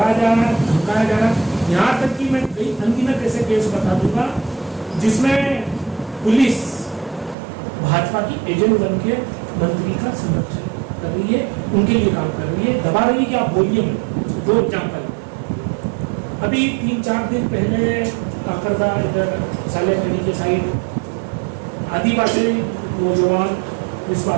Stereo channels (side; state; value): left; drops out; at 7.4 s